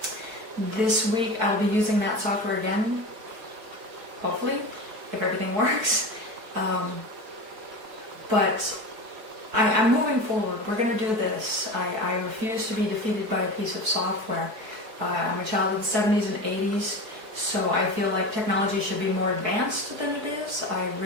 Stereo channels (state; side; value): late; left; 4.6 ms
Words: This week I'll be using that software again, hopefully, if everything works. But I'm moving forward. We're going to do this. I refuse to be defeated by a piece of software. I'm a child of the 70s and 80s, so I feel like technology should be more advanced than it is. I